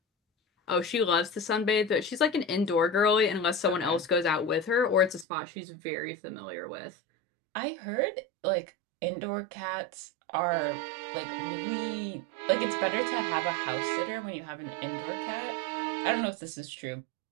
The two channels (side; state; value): left; drops out; at 5.2 s